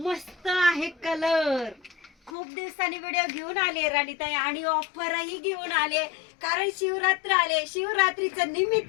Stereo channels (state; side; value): drops out; right; at 2.3 s